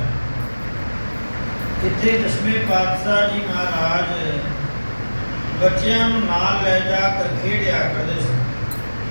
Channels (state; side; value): inverted; both; correlation -1.00